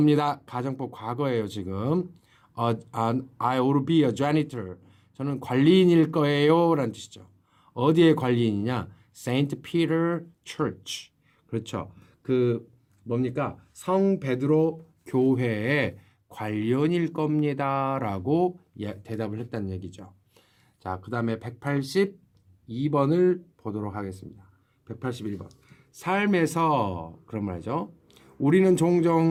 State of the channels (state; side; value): identical; both; correlation 1.00